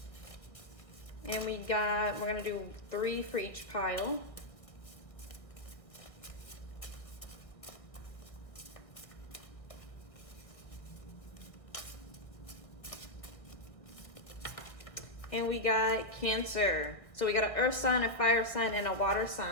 And we're gonna do 3 for each pile. And we got Cancer. So we got an earth sign, a fire sign, and a water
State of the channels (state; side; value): late; right; 1.5 ms